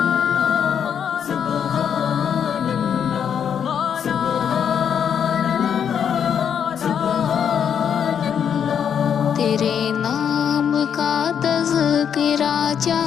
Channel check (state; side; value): quieter; right; 8.0 dB